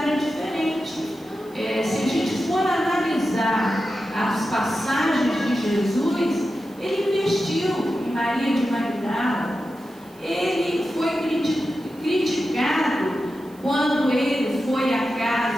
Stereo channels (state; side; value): noise; right; hiss, 28 dB below the sound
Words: diferente. Se a gente for analisar as passagens de Jesus, ele investiu em Maria de Magdala, ele foi criticado quando ele foi à